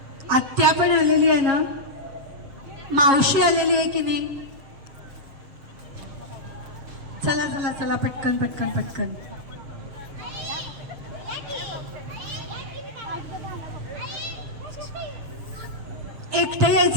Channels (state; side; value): late; left; 7.3 ms